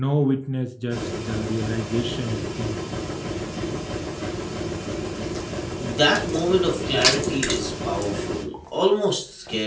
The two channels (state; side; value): identical; both; correlation 1.00